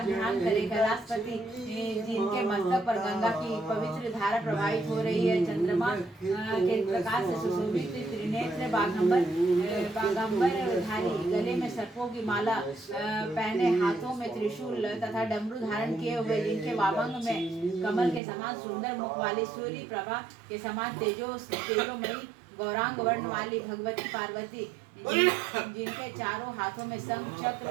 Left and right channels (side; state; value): left; drops out; at 18.2 s